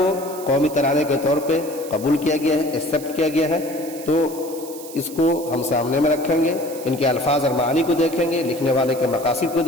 قومی ترانے کے طور پہ قبول کیا گیا ہے، ایکسیپٹ کیا گیا ہے، تو اس کو ہم سامنے میں رکھیں گے، ان کے الفاظ اور معانی کو دیکھیں گے، لکھنے والے کے مقاصد کو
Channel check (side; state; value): right; noise; hiss, 15 dB below the sound